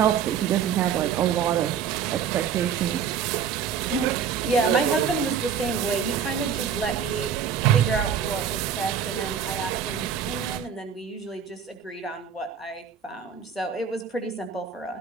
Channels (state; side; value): quieter; left; 7.4 dB